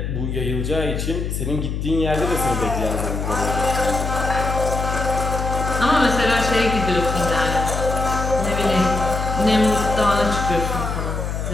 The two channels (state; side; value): noise; left; hum, 3 dB below the sound